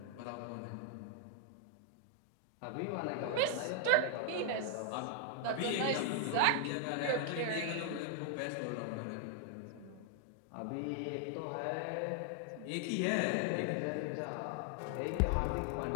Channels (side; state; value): both; different; correlation 0.00